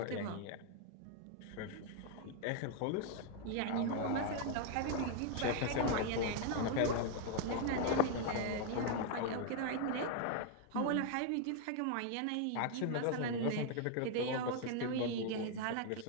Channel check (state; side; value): different; both; correlation 0.00